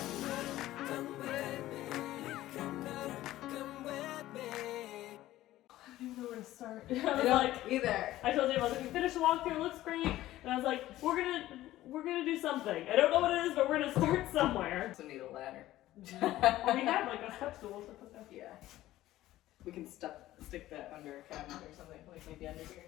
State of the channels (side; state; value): right; quieter; 15.2 dB